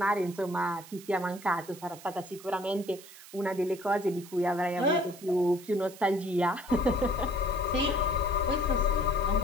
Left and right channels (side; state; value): right; noise; hiss, 18 dB below the sound